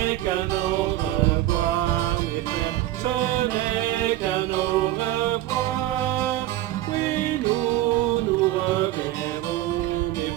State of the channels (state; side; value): quieter; left; 14.8 dB